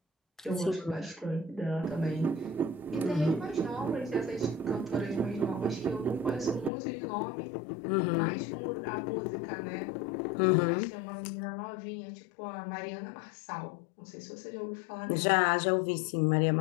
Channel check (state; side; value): drops out; right; at 6.7 s